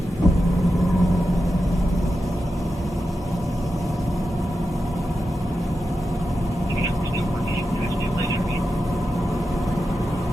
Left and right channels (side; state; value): both; normal; correlation 0.90